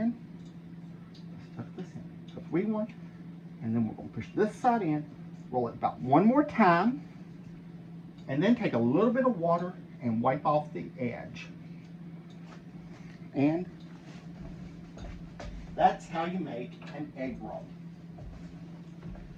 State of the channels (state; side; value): identical; both; correlation 1.00